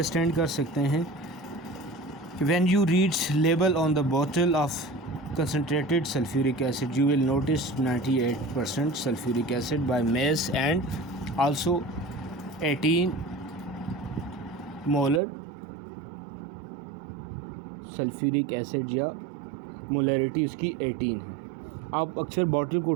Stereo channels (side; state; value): left; drops out; at 15.2 s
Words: कर सकते हैं? When you reads label on the bottle of concentrated sulfuric acid, you will notice 98% sulfuric acid by mass and also 18 molar sulfuric acid या molarity उसकी 18 है। आप अक्सर बॉटल को